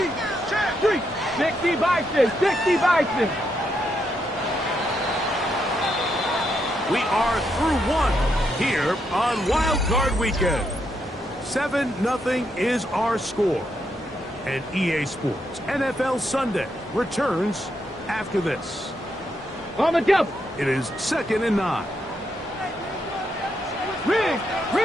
60 Bison. 60 Bison. We are through one here on Wild Card Weekend. 7-0 is our score. And EA Sports NFL Sunday returns after this. On the double. It is second and 9. Rig.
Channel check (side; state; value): both; normal; correlation 0.79